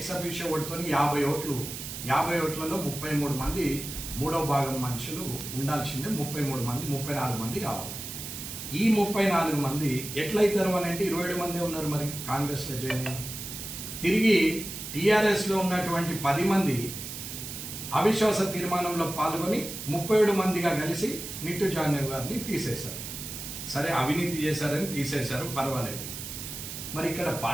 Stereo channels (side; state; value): right; noise; hiss, 8 dB below the sound